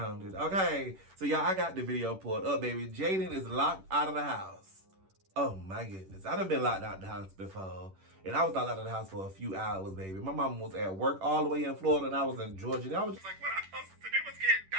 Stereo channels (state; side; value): late; left; 10 ms